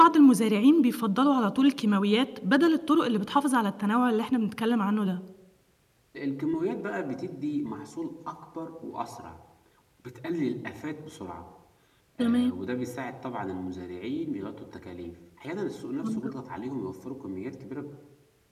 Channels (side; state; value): both; identical; correlation 1.00